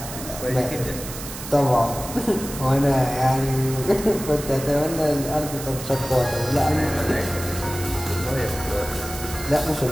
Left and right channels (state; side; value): noise; right; hiss, 10 dB below the sound